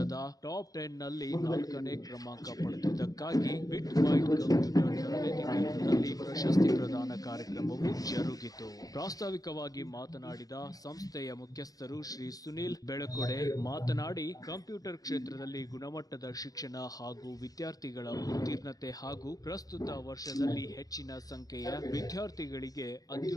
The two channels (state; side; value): late; right; 0.18 ms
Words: ಟಾಪ್ 10 ನಲ್ಲಿ 4ನೇ ಕ್ರಮಾಂಕ ಪಡೆದಿದ್ದಕ್ಕಾಗಿ ಬಿಟ್ ಬೈಟ್ ಕಂಪ್ಯೂಟರ್ ತರಬೇತಿ ಕೇಂದ್ರದಲ್ಲಿ ಪ್ರಶಸ್ತಿ ಪ್ರದಾನ ಕಾರ್ಯಕ್ರಮವು ಜರುಗಿತು. ಪ್ರಾಸ್ತಾವಿಕವಾಗಿ ಮಾತನಾಡಿದ ಸಂಸ್ಥೆಯ ಮುಖ್ಯಸ್ಥರು ಶ್ರೀ ಸುನಿಲ್ ಬೆಳಕೊಡೆ ಮಾತನಾಡಿ, ಕಂಪ್ಯೂಟರ್ ಕ್ಷೇತ್ರದಲ್ಲಿ ಗುಣಮಟ್ಟದ ಶಿಕ್ಷಣ ಹಾಗೂ ವಿದ್ಯಾರ್ಥಿಗಳ ಉತ್ತೀರ್ಣತೆ ಹಾಗೂ ಪ್ರಸ್ತುತ ವರ್ಷದಲ್ಲಿ ಹೆಚ್ಚಿನ ಸಂಖ್ಯೆಯ ವಿದ್ಯಾರ್ಥಿಗಳಿಗೆ